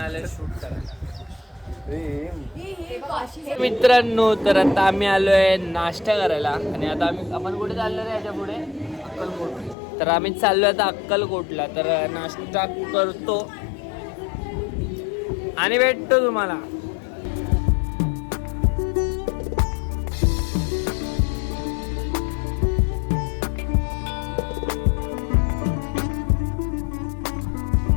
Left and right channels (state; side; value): drops out; right; at 9.8 s